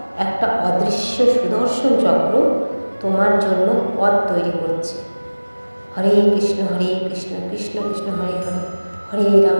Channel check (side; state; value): both; inverted; correlation -1.00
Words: একটা অদৃশ্য সুদর্শন চক্র তোমার জন্য পথ তৈরি করছে। হরে কৃষ্ণ কৃষ্ণ কৃষ্ণ হরে হরে, হরে